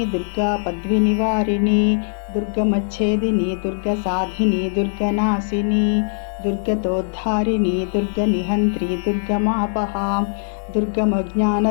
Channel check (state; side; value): silent; right; 65 dB below the other